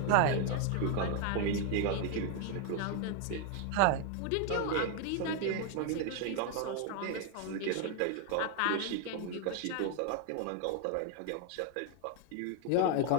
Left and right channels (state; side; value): different; both; correlation 0.01